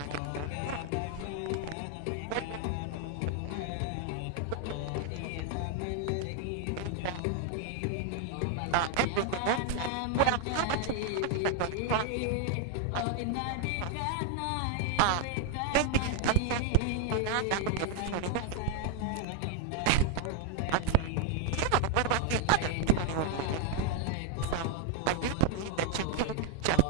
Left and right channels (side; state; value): both; different; correlation 0.00